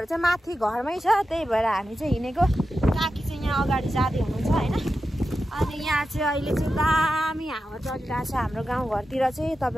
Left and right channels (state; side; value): normal; both; correlation 0.91